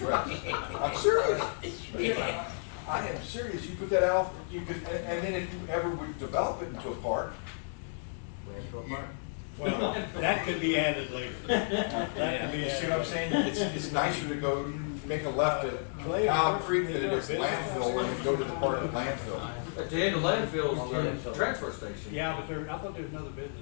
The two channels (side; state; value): right; silent; 56 dB below the other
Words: I'm serious. I am serious. You put that out, you could, and then if you ever would develop it into a park. Well, that could be added later. You see what I'm saying? It's nicer to go make a left at Owl Creek than it is landfill and then go to the part of landfill. At the end of landfill's the transfer station. Yeah, but I thought there was another business.